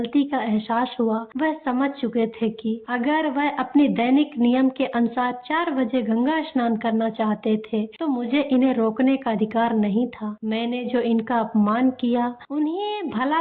का एहसास हुआ। वह समझ चुके थे कि अगर वह अपनी दैनिक नियम के अनुसार 4 बजे गंगा स्नान करना चाहते थे तो मुझे इन्हें रोकने का अधिकार नहीं था। मैंने जो इनका अपमान किया, उन्हें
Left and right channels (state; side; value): identical; both; correlation 1.00